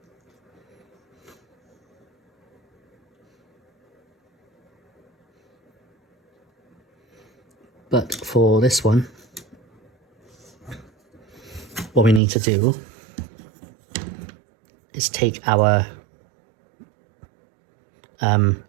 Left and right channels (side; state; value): left; drops out; at 12.2 s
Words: But for this one, what we need to do is take our